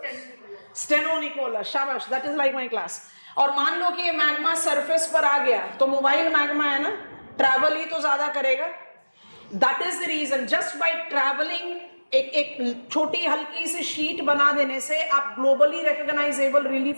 स्टेनो निकोला, शाबाश, that is like my class. और मान लो कि ये मैग्मा सरफेस पर आ गया तो मोबाइल मैग्मा है ना, ट्रैवल ही तो ज्यादा करेगा। That is the reason, just by travelling एक छोटी हल्की सी शीट बना देने से आप ग्लोबली रिकॉग्नाइजेबल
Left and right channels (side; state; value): both; inverted; correlation -1.00